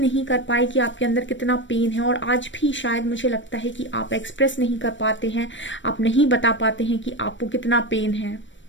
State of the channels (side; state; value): right; late; 0.54 ms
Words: कर पाए कि आपके अंदर कितना पेन है, और आज भी शायद मुझे लगता है कि आप एक्सप्रेस नहीं कर पाते हैं, आप नहीं बता पाते हैं कि आपको कितना पेन है।